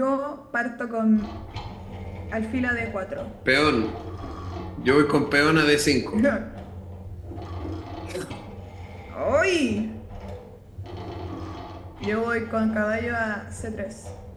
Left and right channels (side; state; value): both; identical; correlation 1.00